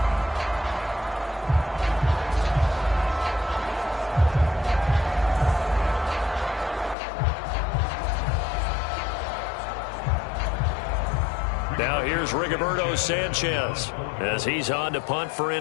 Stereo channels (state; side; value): drops out; right; at 7.0 s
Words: Now here's Rigoberto Sanchez as he's on to punt for